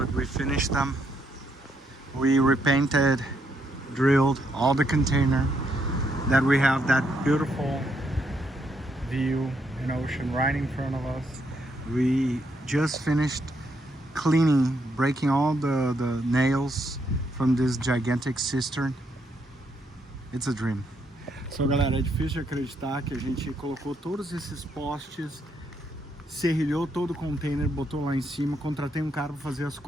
we finished them. We repainted, drilled all the container. That we have that beautiful view and ocean right in front of us. We just finished cleaning, breaking all the nails from this gigantic cistern. It's a dream. So galera, é difícil de acreditar que a gente colocou todos esses postes, serrilhou todo o container, botou lá em cima, contratei um cara para fazer as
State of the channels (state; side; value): normal; both; correlation 0.76